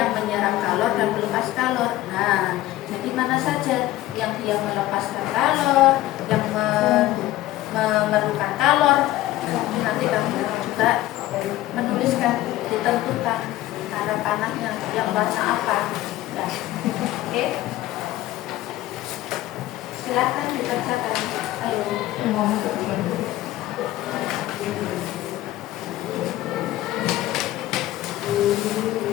menyerap kalor dan melepas kalor. Nah, jadi mana saja yang dia melepaskan kalor, yang memerlukan kalor, nanti kamu juga menuliskan, ditentukan cara panahnya yang warna apa. Ya. Oke. Silakan dibacakan. Ayo.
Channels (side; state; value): right; quieter; 15.5 dB